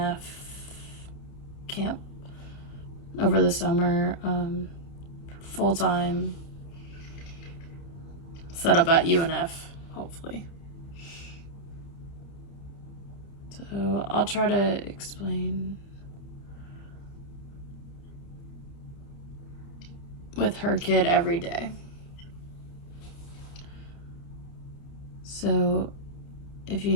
camp over the summer, full-time set up at UNF, hopefully. So I'll try to explain with her kid every day. So if you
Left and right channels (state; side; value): late; right; 30 ms